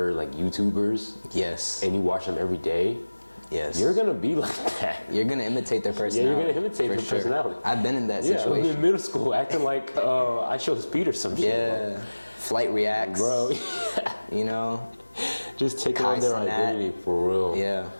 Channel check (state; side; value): inverted; both; correlation -1.00